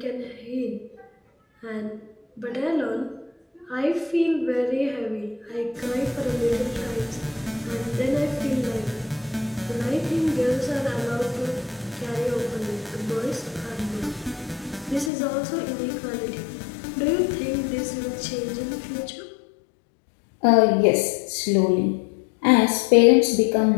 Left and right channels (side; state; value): right; drops out; at 15.1 s